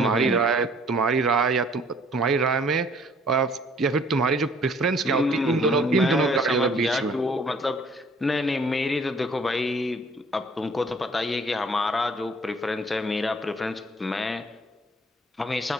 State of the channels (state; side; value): normal; both; correlation 0.57